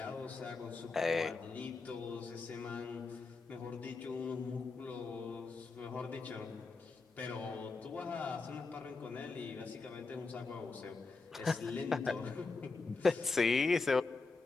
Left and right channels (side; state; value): right; quieter; 4.0 dB